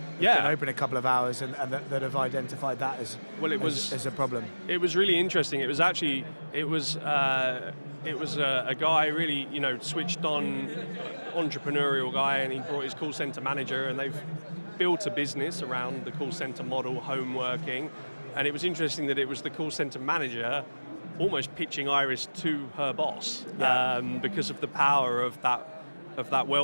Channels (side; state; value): both; inverted; correlation -1.00